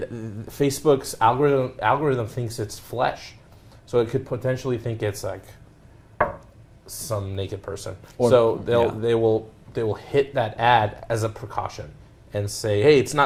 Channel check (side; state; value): both; identical; correlation 1.00